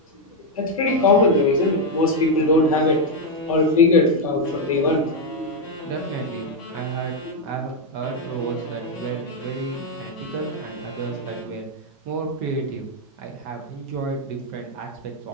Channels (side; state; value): both; normal; correlation 0.02